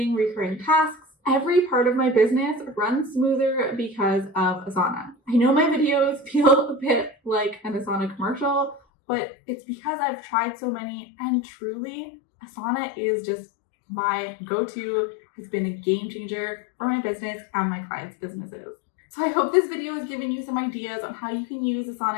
recurring tasks, every part of my business runs smoother because of Asana. I know my videos feel a bit like an Asana commercial, but it's because I've tried so many, and truly, Asana is just my go-to. It's been a game changer for my business and my clients' businesses. So I hope this video has given you some ideas on how you can use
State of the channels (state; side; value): drops out; right; at 8.8 s